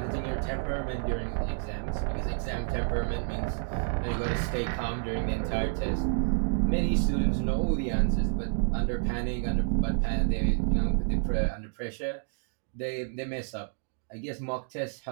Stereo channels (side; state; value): left; silent; digital silence